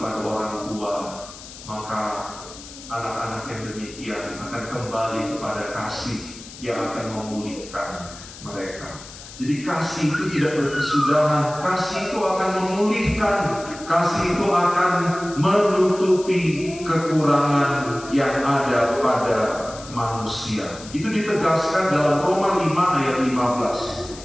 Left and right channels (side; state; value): left; noise; hiss, 16 dB below the sound